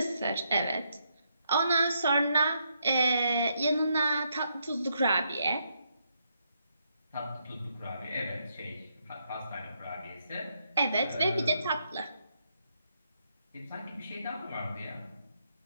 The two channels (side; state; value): both; inverted; correlation -0.77